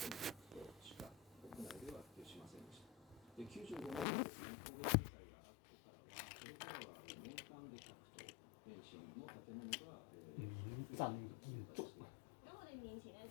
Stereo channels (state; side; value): drops out; right; at 4.0 s